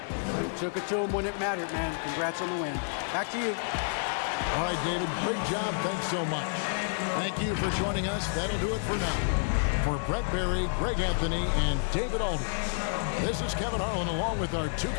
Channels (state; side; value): silent; right; 58 dB below the other